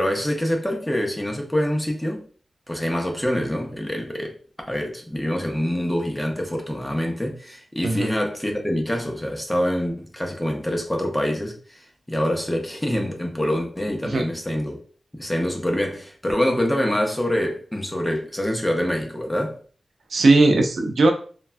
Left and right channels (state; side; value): normal; both; correlation 0.95